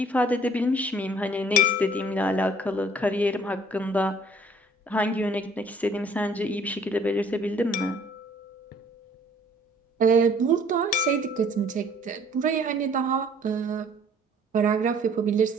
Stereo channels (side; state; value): both; normal; correlation 0.57